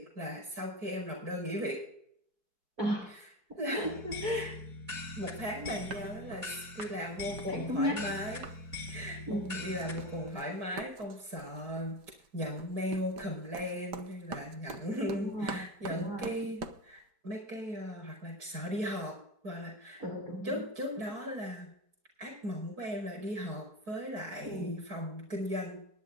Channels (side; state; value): left; late; 4.6 ms